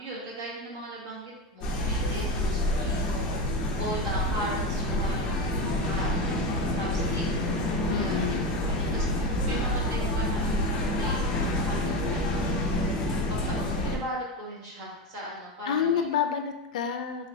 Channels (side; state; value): both; normal; correlation 0.17